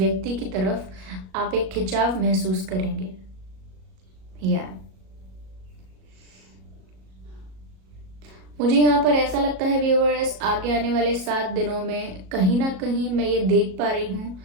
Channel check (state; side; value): late; left; 37 ms